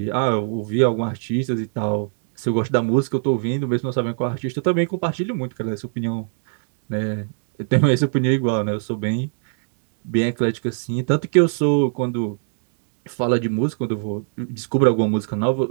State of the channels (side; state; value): left; silent; digital silence